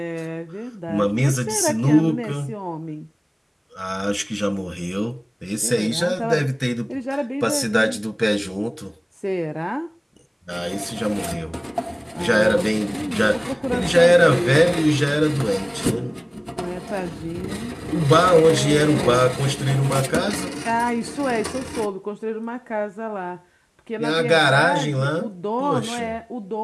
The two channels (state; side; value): identical; both; correlation 1.00